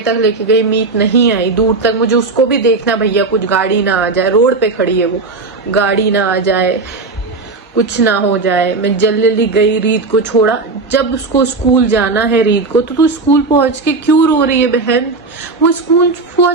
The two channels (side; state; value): left; quieter; 3.8 dB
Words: तक लेके गई, मीत नहीं आई दूर तक। मुझे उसको भी देखना भैया कुछ गाड़ी ना आ जाए, रोड पे खड़ी है वो, गाड़ी ना आ जाए, कुछ ना हो जाए। मैं जल्दी गई, रीत को छोड़ा। जब उसको स्कूल जाना है रीत को, तो तू स्कूल पहुंच के क्यों रो रही है बहन? वो स्कूल